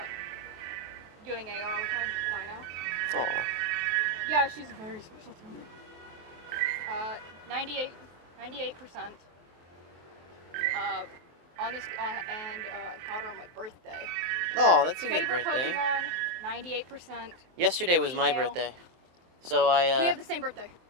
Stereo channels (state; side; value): late; left; 23 ms